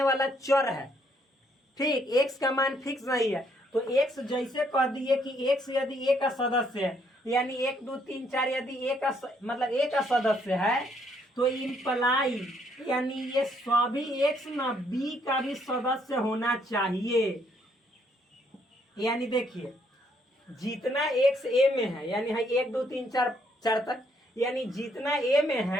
वाला चर है। ठीक, एक्स का मान फिक्स नहीं है। तो एक्स जैसे कह दिए कि एक्स यदि ए का सदस्य है, यानी 1 2 3 4 यदि ए का मतलब ए का सदस्य है, तो इम्प्लाई यानी ये सभी एक्स ना बी का भी सदस्य होना चाहिए। यानी देखिए जितना एक्स ए में है, यानी है 1 2 3 4 तक, यानी जितना ए में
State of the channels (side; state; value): both; normal; correlation 0.70